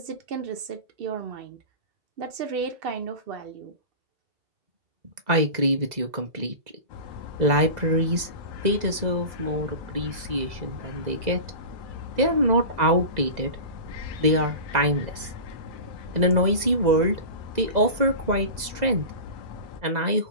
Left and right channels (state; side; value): late; left; 2.0 ms